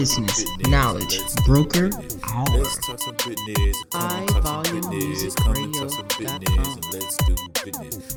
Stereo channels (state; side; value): identical; both; correlation 1.00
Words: Knowledge Broker Hour.